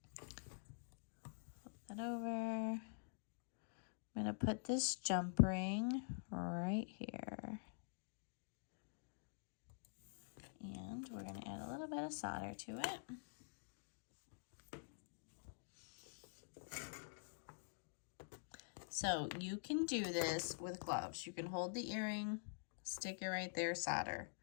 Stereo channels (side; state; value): right; silent; digital silence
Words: Flip that over. I'm going to put this jump ring right here. And we're going to add a little bit of solder to it. So you can do this with gloves. You can hold the earring, stick it right there, solder,